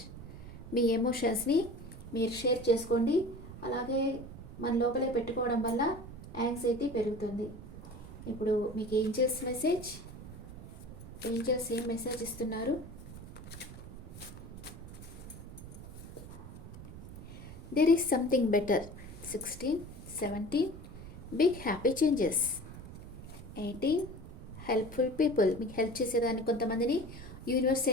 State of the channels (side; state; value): right; noise; rumble, 13 dB below the sound